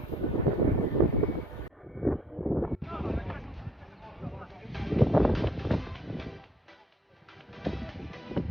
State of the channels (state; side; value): normal; both; correlation 0.62